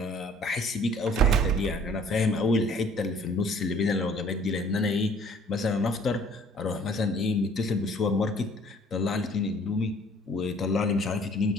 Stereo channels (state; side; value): normal; both; correlation 0.56